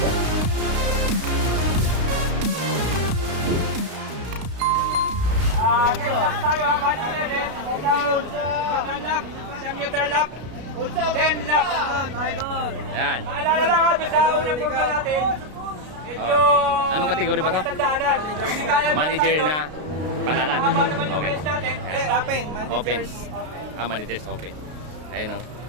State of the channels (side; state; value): left; late; 33 ms